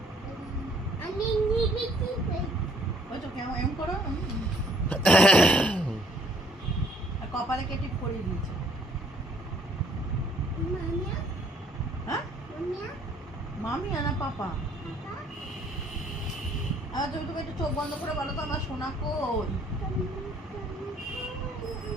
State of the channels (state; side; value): normal; both; correlation 0.61